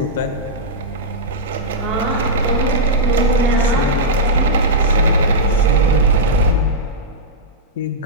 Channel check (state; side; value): normal; both; correlation -0.09